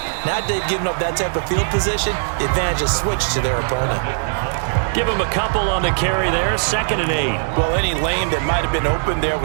now they've given up that type of field position, the advantage is switched to their opponent. Give him a couple on the carry there, 2nd and 8. Well, any lane that might have been open there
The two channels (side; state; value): left; silent; digital silence